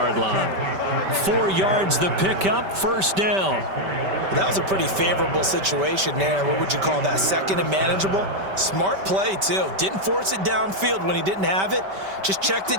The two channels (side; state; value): left; late; 5.2 ms